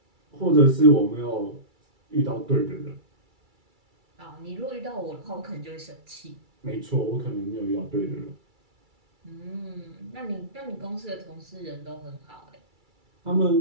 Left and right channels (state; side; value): late; left; 2.3 ms